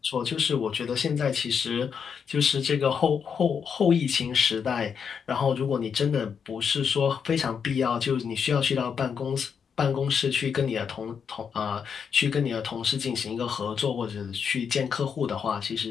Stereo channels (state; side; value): quieter; right; 6.8 dB